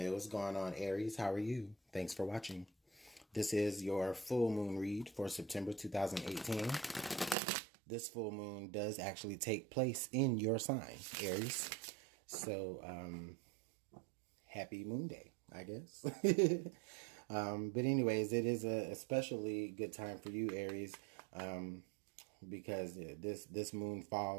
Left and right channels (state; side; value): drops out; left; at 7.4 s